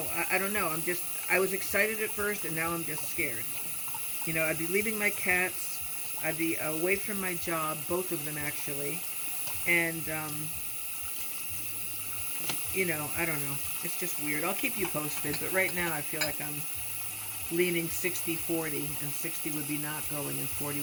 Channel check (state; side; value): identical; both; correlation 1.00